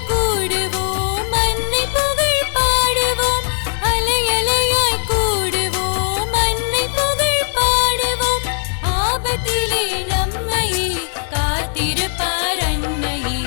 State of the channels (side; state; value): right; silent; 63 dB below the other